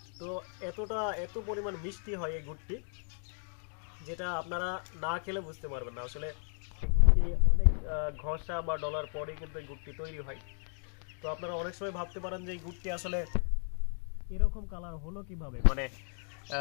তো এত পরিমাণ মিষ্টি হয় এই গুড়টি, যেটা আপনারা না খেলে বুঝতে পারবেন না। আসলে এই গুড়টি অনেক ঘষা বা ডলার পরেই কিন্তু এই গুড়টি তৈরি হয়। তো আপনারা অনেক সময় ভাবতে পারেন যে এই গুড়টি আসলে এরকম কালার হলো কিভাবে, মানে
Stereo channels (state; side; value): silent; right; 55 dB below the other